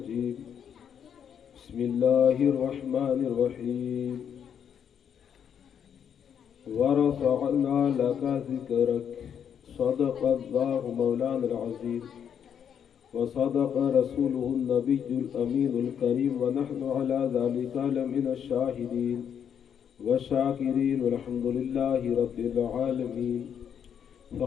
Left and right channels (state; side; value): quieter; right; 8.3 dB